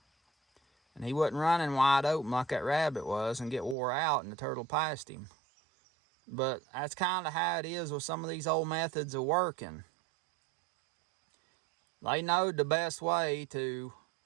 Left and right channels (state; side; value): drops out; left; at 3.8 s